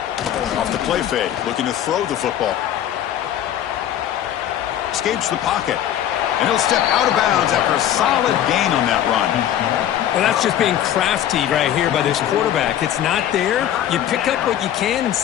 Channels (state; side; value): quieter; right; 11.1 dB